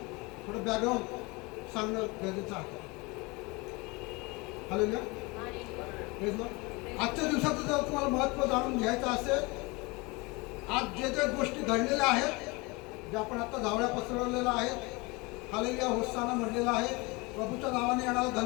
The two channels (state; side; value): quieter; right; 25.8 dB